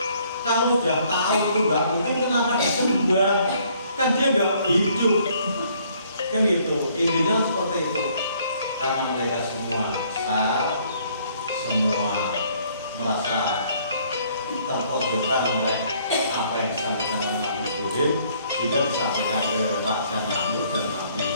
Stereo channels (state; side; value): inverted; both; correlation -0.63